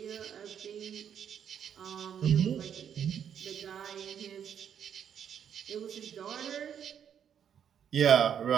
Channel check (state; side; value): quieter; left; 8.6 dB